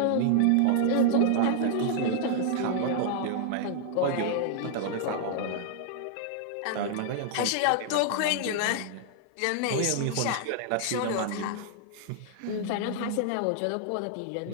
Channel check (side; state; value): both; different; correlation -0.01